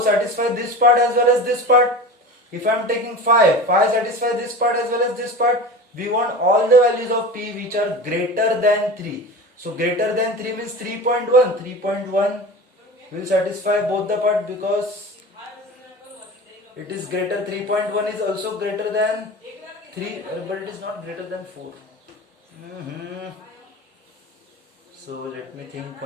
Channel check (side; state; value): both; normal; correlation 0.32